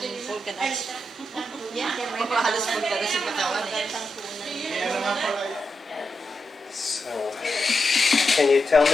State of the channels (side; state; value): both; normal; correlation 0.86